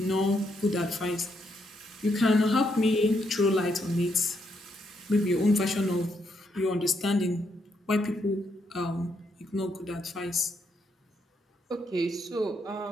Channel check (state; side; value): normal; both; correlation 0.77